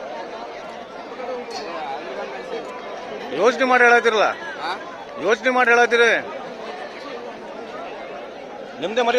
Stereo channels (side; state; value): both; identical; correlation 1.00